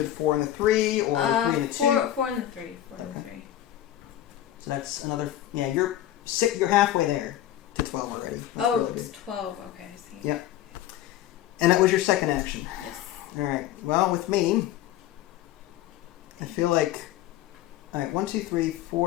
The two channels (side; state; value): right; quieter; 12.7 dB